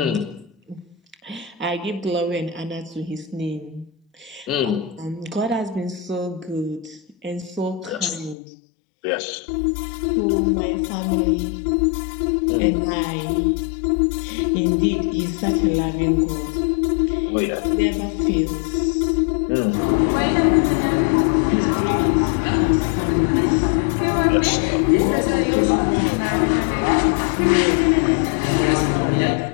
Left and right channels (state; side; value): drops out; right; at 8.3 s